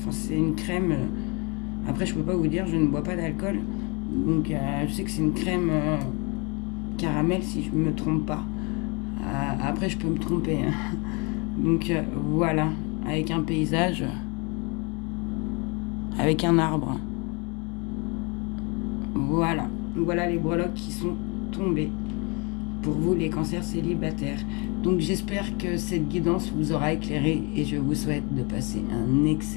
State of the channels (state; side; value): quieter; right; 30.2 dB